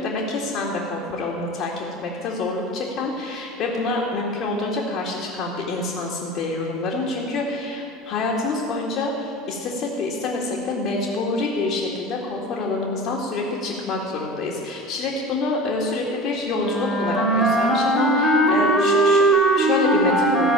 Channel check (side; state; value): both; normal; correlation 0.34